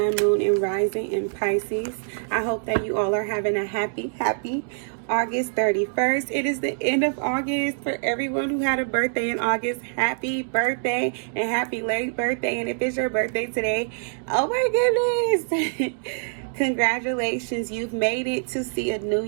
moon, and rising in Pisces. I hope that you all are having a happy August 31st. It is the end of August. For everyone who had a birthday in August, happy birthday and happy late birthday. And if it's your birthday today, oh my goodness. Congratulations, you've made it to see a new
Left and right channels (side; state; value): left; silent; digital silence